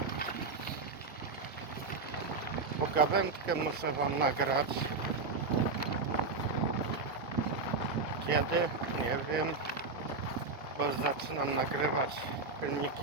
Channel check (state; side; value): quieter; left; 3.8 dB